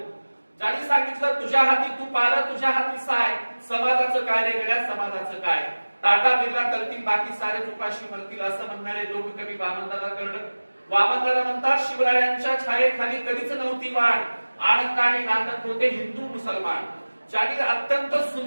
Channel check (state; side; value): inverted; both; correlation -1.00